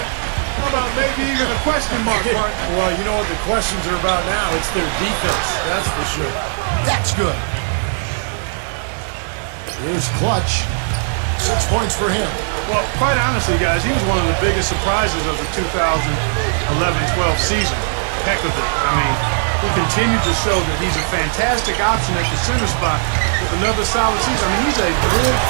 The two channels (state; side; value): silent; left; digital silence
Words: How about maybe even a question mark, Mark? Well, you know what the questions are about now? It's their defense, that's for sure. That's good. Here's Clutch. 6 points for him. Well, quite honestly, guys, he was one of the biggest surprises of the 2011-12 season. Heck of it. I mean, he continued to show that he's a fantastic option at the center spot with another solid season. I mean, he's a good